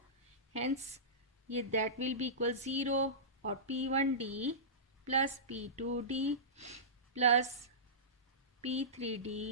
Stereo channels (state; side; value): normal; both; correlation -0.20